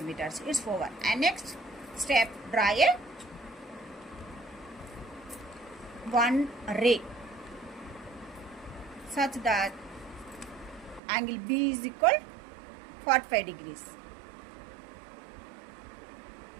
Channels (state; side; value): drops out; left; at 11.0 s